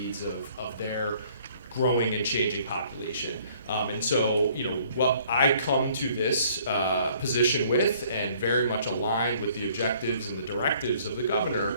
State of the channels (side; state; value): both; inverted; correlation -0.59